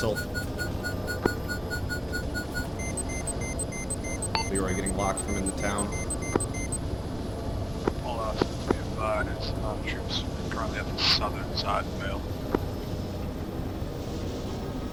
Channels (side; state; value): both; identical; correlation 1.00